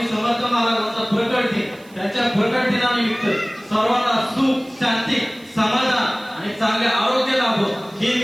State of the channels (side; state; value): right; noise; hiss, 27 dB below the sound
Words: समर्थ महाराजांचा प्रकट दिन, त्यांच्या प्रकट दिनानिमित्त सर्वांना सुख शांती समाधान आणि चांगले आरोग्य लाभो ही